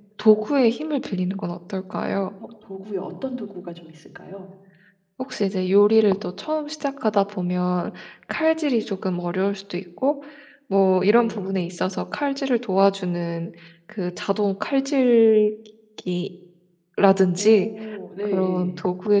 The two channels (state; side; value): identical; both; correlation 1.00